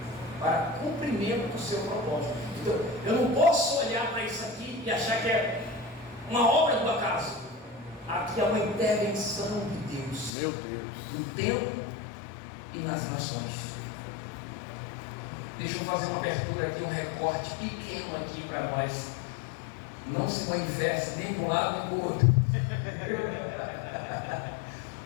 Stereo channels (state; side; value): drops out; right; at 10.3 s